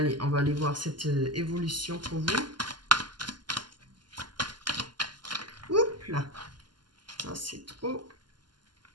on va aller voir cette évolution pour vous. Oups là, ça c'est trop.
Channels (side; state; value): left; late; 0.71 ms